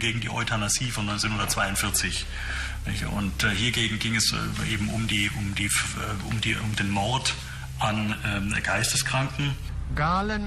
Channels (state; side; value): identical; both; correlation 1.00